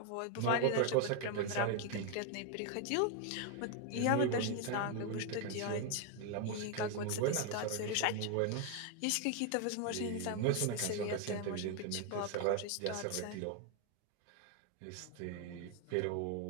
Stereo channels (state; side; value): different; both; correlation 0.01